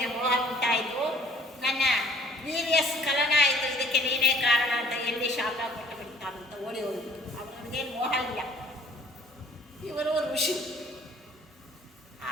ಮೋಹ ಉಂಟಾಯಿತು, ನನ್ನ ವೀರ್ಯ ಸ್ಖಲನ ಆಯಿತು, ಇದಕ್ಕೆ ನೀನೇ ಕಾರಣ ಅಂತ ಎಲ್ಲಿ ಶಾಪ ಕೊಟ್ಟು ಬಿಡ್ತಾರಂತ ಓಡಿ ಹೋಗಿದ್ದು. ಅವನಿಗೇನು ಮೋಹ ಇಲ್ಲ. ಇವರು ಋಷಿ.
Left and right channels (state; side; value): normal; both; correlation 0.56